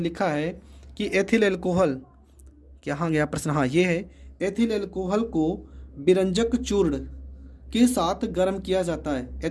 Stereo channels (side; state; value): both; identical; correlation 1.00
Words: है कि एथिल एल्कोहल, कहाँ गया प्रश्न, हाँ ये है, एथिल एल्कोहल को विरंजक चूर्ण के साथ गर्म किया जाता है।